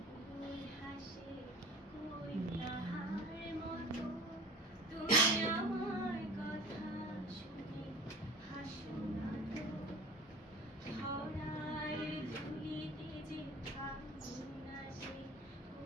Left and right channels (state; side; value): normal; both; correlation 0.40